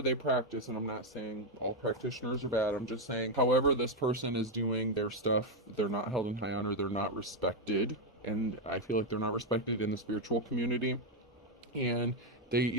they practice, and I'm not saying all practitioners are bad, I'm just saying however this person is doing their stuff, they're not held in high honor, they're not respected. And I feel like they're not respected in the spiritual community. And they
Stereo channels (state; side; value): normal; both; correlation 0.03